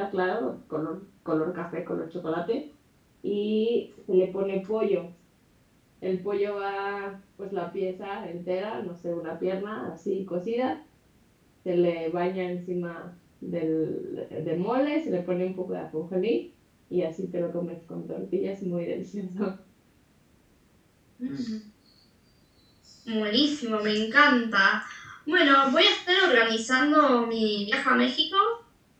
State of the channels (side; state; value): both; identical; correlation 1.00